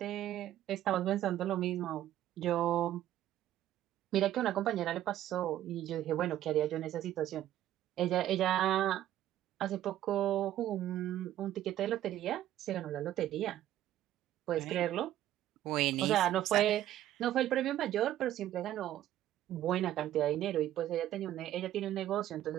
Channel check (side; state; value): left; quieter; 12.8 dB